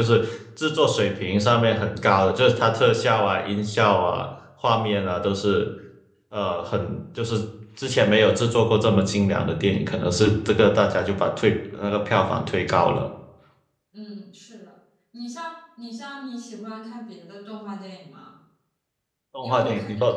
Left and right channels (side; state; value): both; identical; correlation 1.00